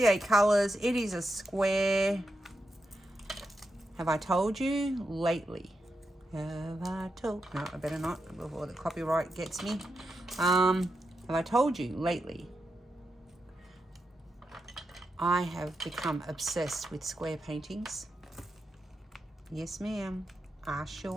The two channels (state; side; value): normal; both; correlation 0.86